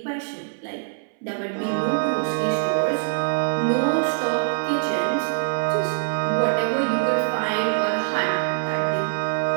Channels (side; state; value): left; silent; 63 dB below the other